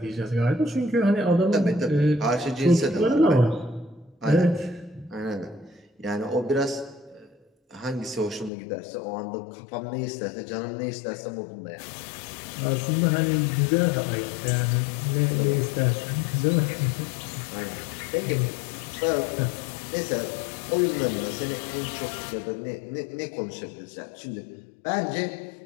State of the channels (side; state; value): right; drops out; at 8.5 s